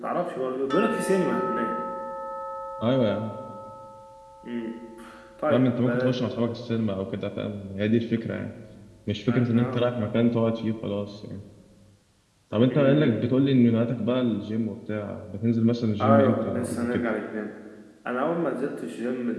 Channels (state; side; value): identical; both; correlation 1.00